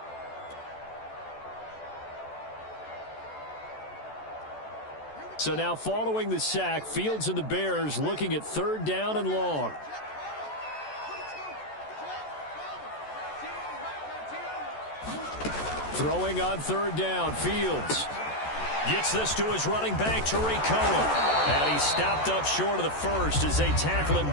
So now following the sack, Fields and the Bears looking at 3rd down and long. Throwing on 3rd down, Fields gets this to his running back, Tariq Cohen. And he's stopped up short of the first as they tackle him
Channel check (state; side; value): late; right; 14 ms